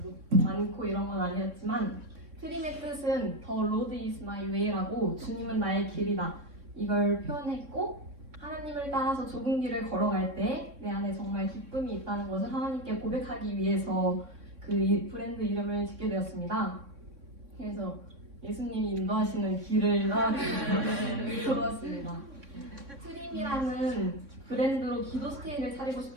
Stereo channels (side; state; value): left; late; 3.6 ms